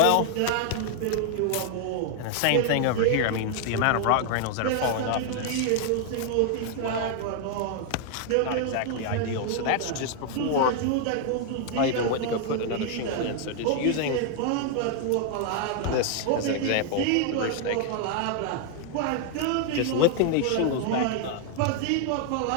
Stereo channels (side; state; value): both; different; correlation 0.00